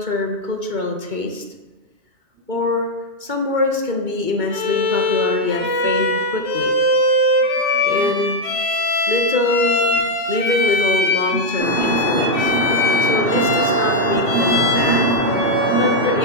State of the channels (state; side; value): late; left; 2.2 ms